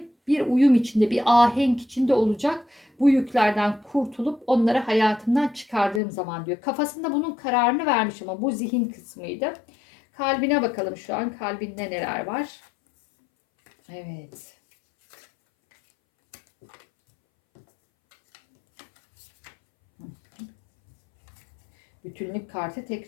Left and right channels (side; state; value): right; drops out; at 6.0 s